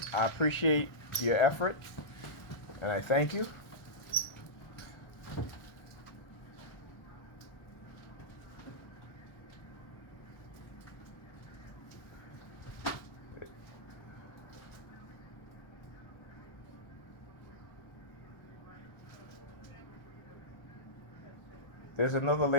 I appreciate your effort, and I thank you. There's another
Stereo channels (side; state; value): right; late; 1.4 ms